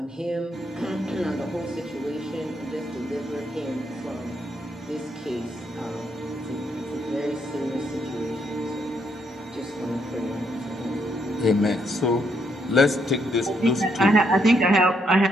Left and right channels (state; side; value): normal; both; correlation 0.75